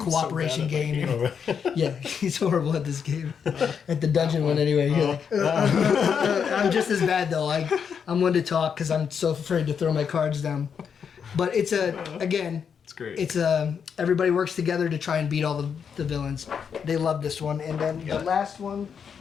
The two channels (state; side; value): quieter; right; 7.0 dB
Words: game. Yeah, he's horrible at this game. At the dungeon one anyway. You're like, I'm just as bad though. I'm one to talk because I'm so afraid to throw my cards down. But it's It's great. it's everybody works together to try and beat all the villains. They love this one. And then the last one